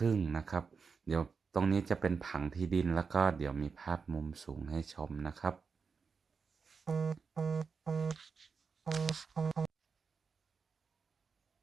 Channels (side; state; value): left; quieter; 5.3 dB